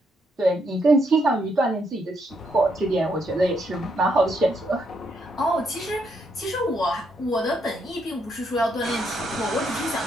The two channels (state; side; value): normal; both; correlation 0.76